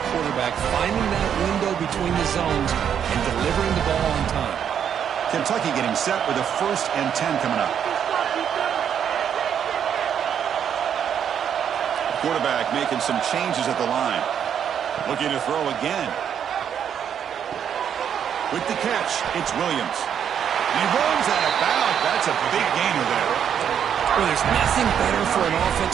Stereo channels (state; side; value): quieter; left; 8.6 dB